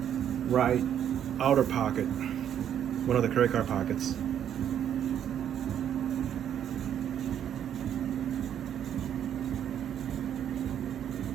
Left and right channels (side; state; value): left; quieter; 9.6 dB